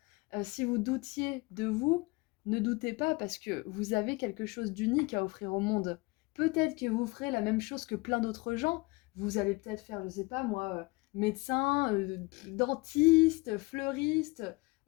Si vous doutiez de vous, ne doutez pas parce que vous avez quelque chose d'unique à offrir au monde. Peut-être que vous ferez la même chose que plein d'autres gens. Vous allez peut-être faire, je sais pas moi, médecin, dentiste, fleuriste,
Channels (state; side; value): quieter; right; 24.8 dB